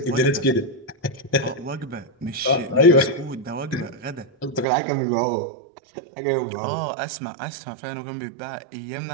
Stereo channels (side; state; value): left; drops out; at 4.7 s